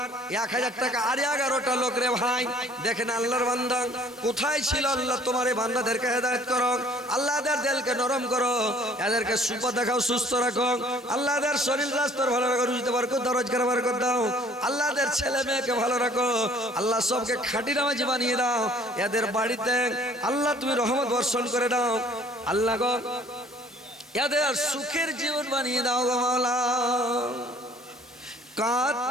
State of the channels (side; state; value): both; normal; correlation 0.55